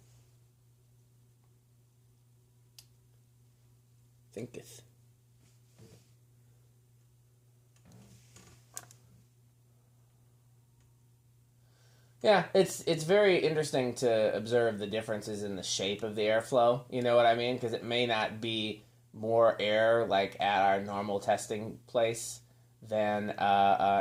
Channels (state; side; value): identical; both; correlation 1.00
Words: Thinketh. Yeah, it's very interesting to observe the differences in the shape of the airflow. You know what I mean? Because it may not be more air like at our normal testing place than